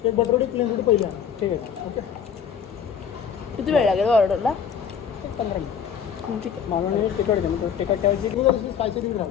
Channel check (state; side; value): quieter; right; 7.6 dB